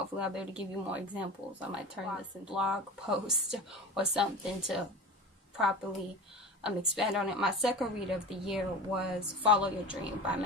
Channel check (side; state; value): both; normal; correlation 0.32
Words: I'll be able to give you more examples. I might turn this into a blog post or something to properly expand on it. My second read of the year was Follow Your Dream by